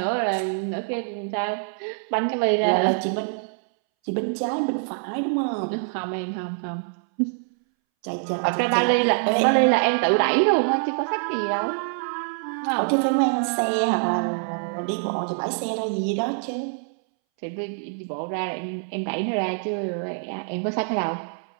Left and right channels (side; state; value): left; silent; 62 dB below the other